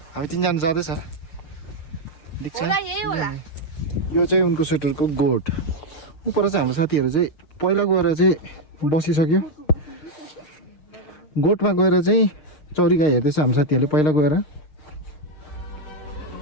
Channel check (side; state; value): right; late; 6.5 ms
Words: हामी 3जना जाँदैछ देख्छ यो चाहिँ उनको स्वेटरको गोट उपर चाहिँ हाम्रो साथीहरू चाहिँ पहिला गएर चाहिँ बसिसक्यो गोठमा गएर चाहिँ चौरी गाई हेर्दैछ हाम्रो साथीहरूले पहिला गएर